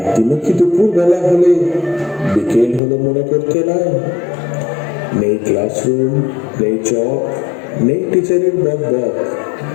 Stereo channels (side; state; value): right; drops out; at 2.8 s